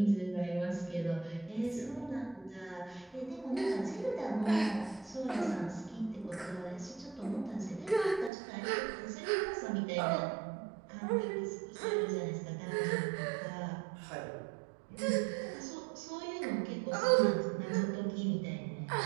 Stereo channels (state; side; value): drops out; left; at 8.3 s